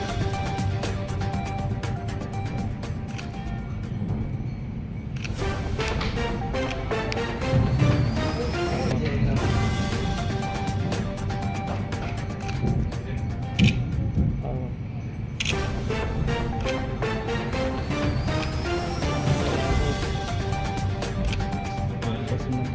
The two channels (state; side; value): identical; both; correlation 1.00